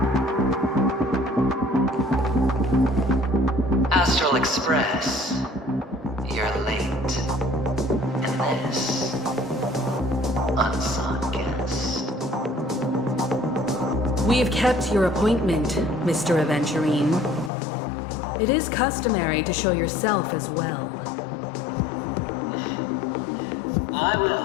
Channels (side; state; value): right; drops out; at 17.5 s